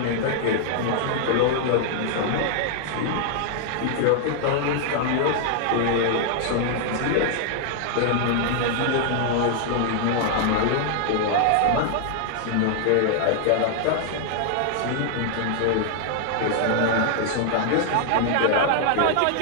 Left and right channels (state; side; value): different; both; correlation 0.00